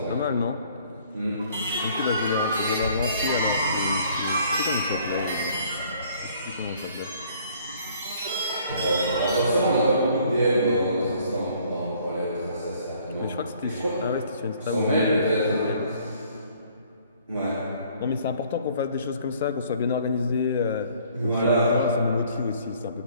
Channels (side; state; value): both; inverted; correlation -0.59